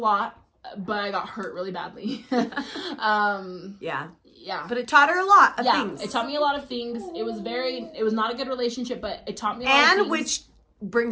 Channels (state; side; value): identical; both; correlation 1.00